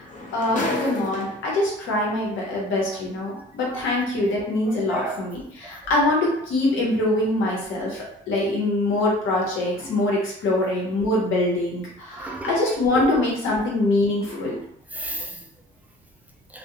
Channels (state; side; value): normal; both; correlation 0.46